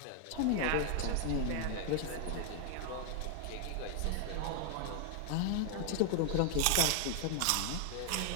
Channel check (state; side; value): different; both; correlation 0.00